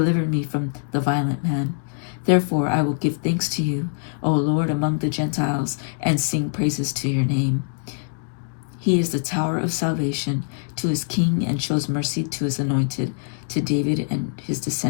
me from the violent man. Therefore I will give thanks to you, O Lord, among the Gentiles, and sing praises to your name. He is the tower of salvation to his king, and shows mercy to his anointed, to David and his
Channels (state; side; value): silent; right; digital silence